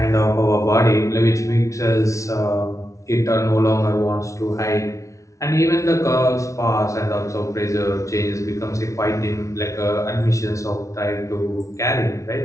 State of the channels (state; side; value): late; right; 0.15 ms